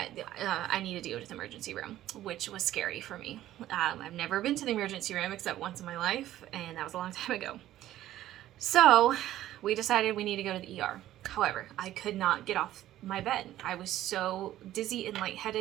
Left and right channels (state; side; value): quieter; left; 13.6 dB